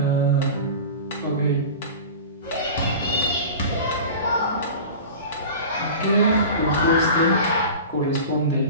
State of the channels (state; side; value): inverted; both; correlation -0.34